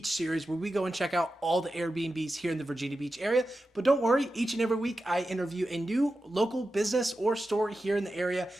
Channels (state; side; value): normal; both; correlation 0.92